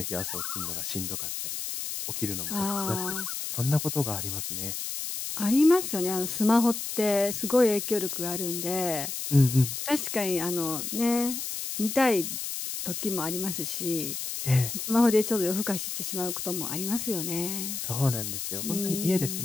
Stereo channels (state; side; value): noise; left; hiss, 5 dB below the sound